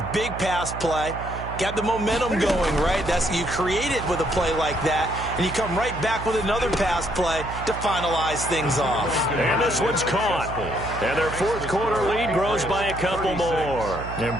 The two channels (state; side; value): noise; right; hum, 9 dB below the sound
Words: big pass play. Got the momentum going, right? You create it with a play like that, and you come right back with another pass play to finalize things off. And this one's caught. And their fourth quarter lead grows by a couple more. And